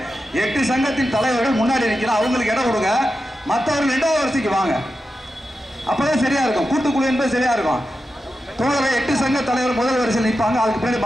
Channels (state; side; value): normal; both; correlation 0.90